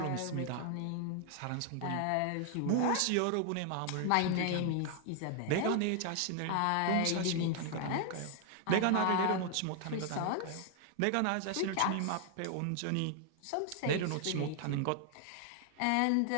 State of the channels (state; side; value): different; both; correlation 0.00